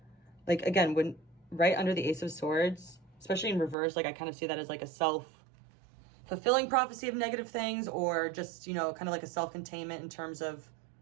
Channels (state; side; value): drops out; left; at 3.8 s